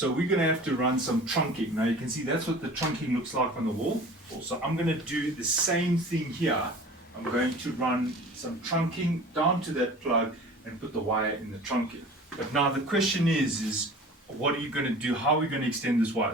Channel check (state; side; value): normal; both; correlation 0.42